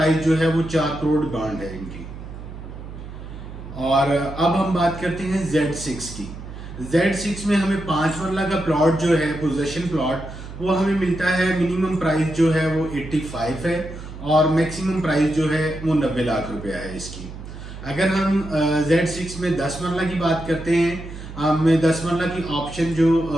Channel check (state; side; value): noise; right; hum, 12 dB below the sound